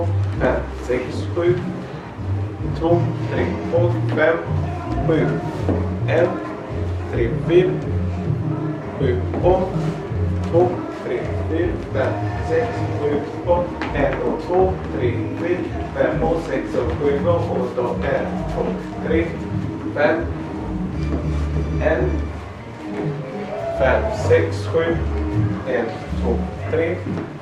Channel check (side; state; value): both; identical; correlation 1.00